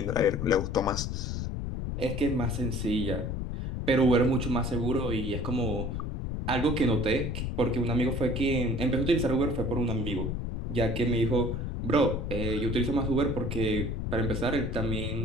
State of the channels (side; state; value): left; noise; rumble, 3 dB below the sound